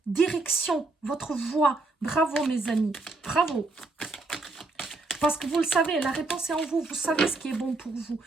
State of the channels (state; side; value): quieter; left; 3.3 dB